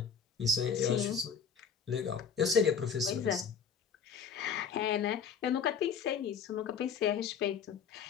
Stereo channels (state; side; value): quieter; right; 6.6 dB